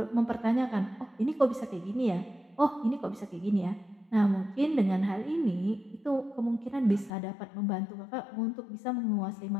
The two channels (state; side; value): drops out; right; at 7.1 s